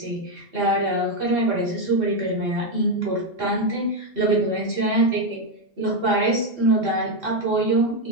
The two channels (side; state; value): both; normal; correlation 0.05